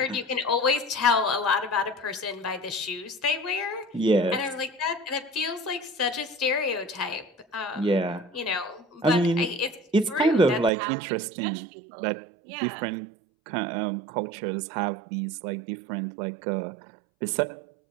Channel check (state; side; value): drops out; left; at 10.7 s